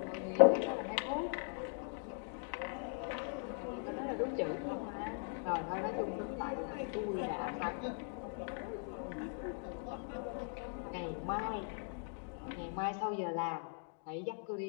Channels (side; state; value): right; silent; 51 dB below the other